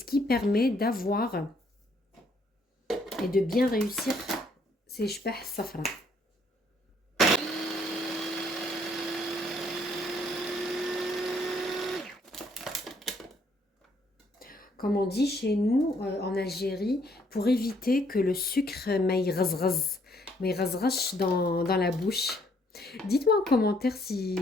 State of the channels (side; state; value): both; normal; correlation 0.67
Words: qui permet d'avoir et de bien réussir ces Shbah Safra. Comme on dit chez nous en Algérie, pour éviter que le sucre m'aille dans la bouche. Dites-moi en commentaire si